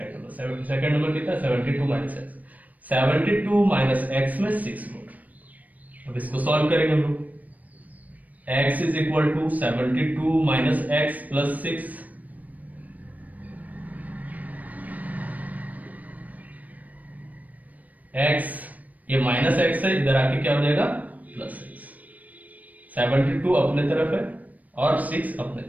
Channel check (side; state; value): left; late; 0.075 ms